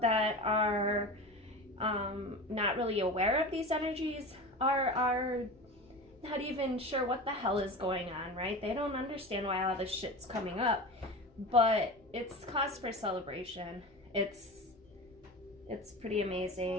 are not really aware of these energies are not even sure what the hell is going on, right? They don't understand why all this shit's coming up, but it's cause for celebration. It's pretty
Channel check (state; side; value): noise; left; hum, 29 dB below the sound